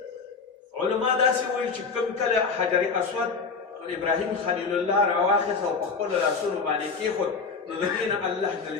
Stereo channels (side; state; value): right; quieter; 4.9 dB